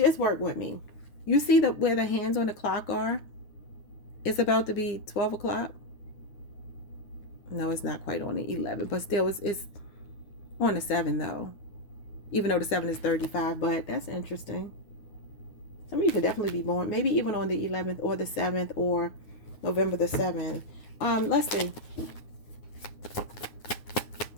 work with me. You see where the hands on the clock are? It's about to be 12 o'clock. No, it's not quite on the 11, but still it's on the 7 though. Even though the 7 is 35, but that's interesting. Some of you could definitely be born, maybe even on the 11th or the 7th or November the 7th. Let's see.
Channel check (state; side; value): late; right; 9.8 ms